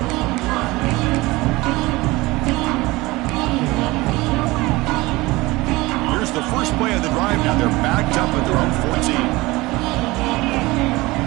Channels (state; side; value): quieter; left; 21.1 dB